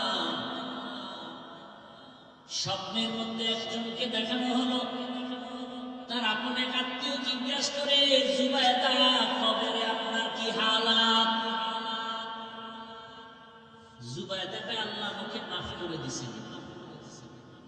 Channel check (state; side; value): identical; both; correlation 1.00